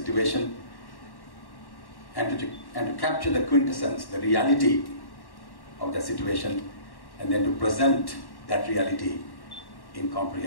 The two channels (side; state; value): right; late; 1.1 ms